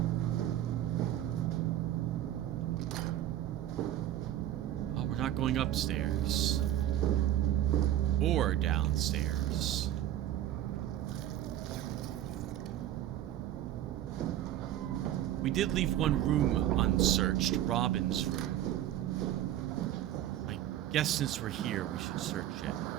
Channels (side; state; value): left; quieter; 12.4 dB